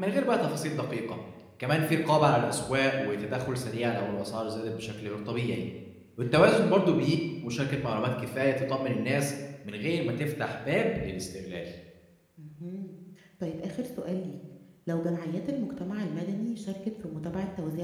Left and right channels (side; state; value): both; identical; correlation 1.00